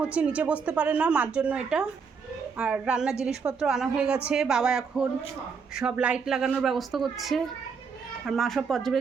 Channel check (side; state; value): left; quieter; 5.7 dB